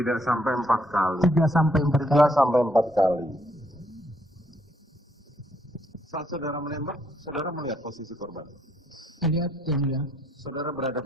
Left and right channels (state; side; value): normal; both; correlation 0.71